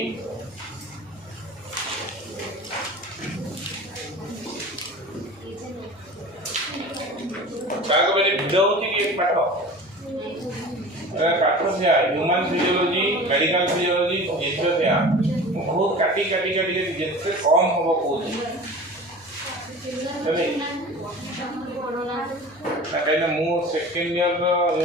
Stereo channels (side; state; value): left; noise; hum, 28 dB below the sound